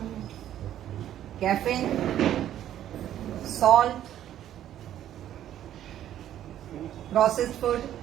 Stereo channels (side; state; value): left; quieter; 11.5 dB